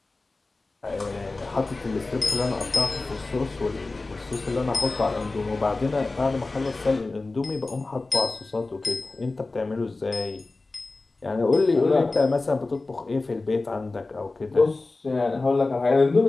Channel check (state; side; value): quieter; right; 3.4 dB